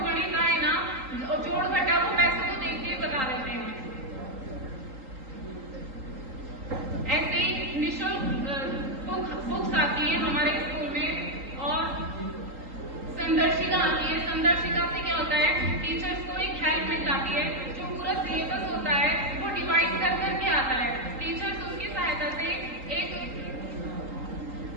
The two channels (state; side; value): late; left; 3.8 ms